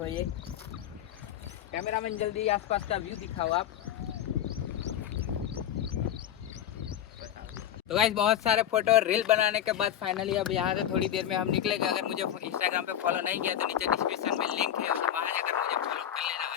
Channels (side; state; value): right; quieter; 10.6 dB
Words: ये कैमरामैन जल्दी आसपास का व्यू दिखाओ आप। तो गाइस बहुत सारे फोटो और रील बनाने के बाद फाइनली अब यहाँ से थोड़ी देर में हम निकलेंगे। अगर मुझे इंस्टाग्राम पे फॉलो नहीं किया तो नीचे डिस्क्रिप्शन में लिंक है, वहाँ जाकर मुझे फॉलो कर लेना